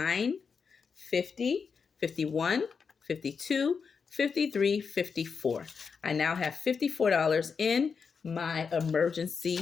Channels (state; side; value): quieter; right; 5.7 dB